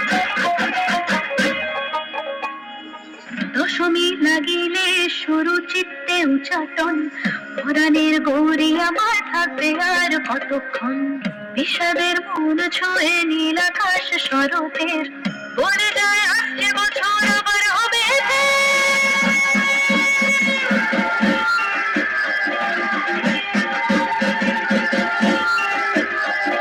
দশমী লাগিলে শুরু চিত্তে উচাটন, পুরাণের গৌরী আমার থাকবে আর কতক্ষণ। বিষাদের মন ছুঁয়ে নীল আকাশ স্বরূপের, বলে যায় আসছে বছর আবার হবে।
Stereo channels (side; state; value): both; identical; correlation 1.00